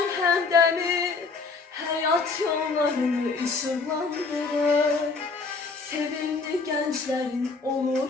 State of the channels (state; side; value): quieter; right; 4.3 dB